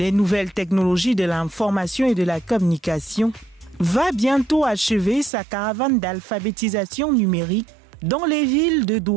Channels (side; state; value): left; drops out; at 5.3 s